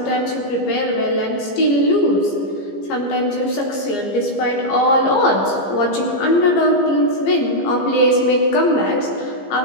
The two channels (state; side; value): late; right; 15 ms